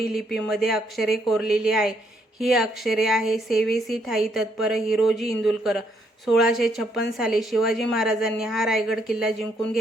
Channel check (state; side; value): normal; both; correlation 0.73